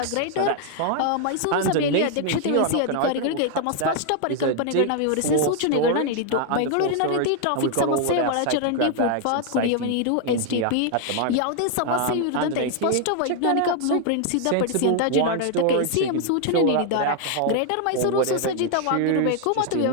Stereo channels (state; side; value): different; both; correlation 0.00